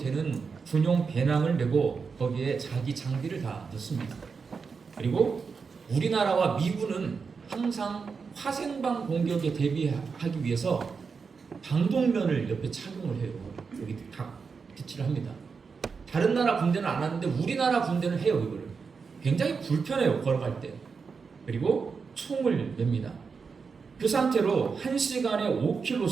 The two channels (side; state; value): left; quieter; 5.3 dB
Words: 군용 배낭을 메고 거기에 자기 장비를 다 넣습니다. 그리고 우리나라와 미군은 항상 화생방 공격에 대비하기 위해서 방독면을 옆에 착용을 해요. 여기 각 비치를 합니다. 다른 나라 군대는 안 하는데 우리나라 군대는 해요. 이거를 굉장히 불편해요, 걸어갈 때. 그리고 총을 맵니다. 그 상태로 1시간에